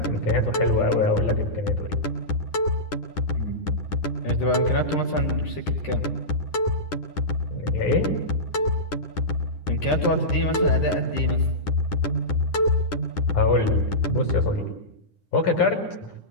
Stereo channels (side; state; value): right; late; 11 ms